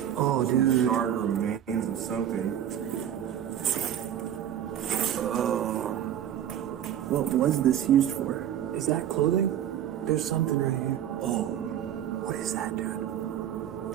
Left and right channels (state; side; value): quieter; left; 10.3 dB